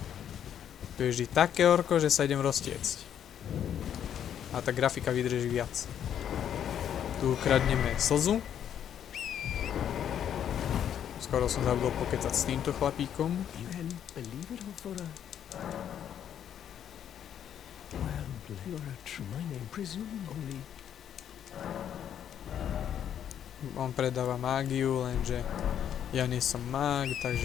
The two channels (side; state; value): right; quieter; 9.5 dB